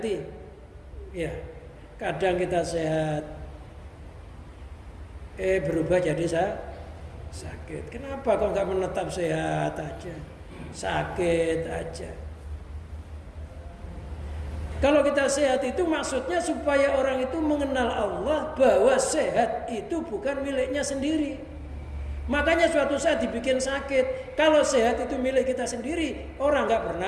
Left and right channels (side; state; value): both; identical; correlation 1.00